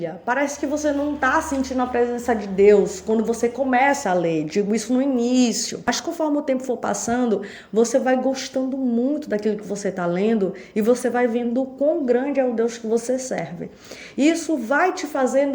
parece que você não está sentindo a presença de Deus quando você começa a ler. Digo isso no início. Mas conforme o tempo for passando, você vai gostando muito daquilo que você está lendo e você vai vendo o quão grande é o Deus que você serve. Isso vai te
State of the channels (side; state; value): both; identical; correlation 1.00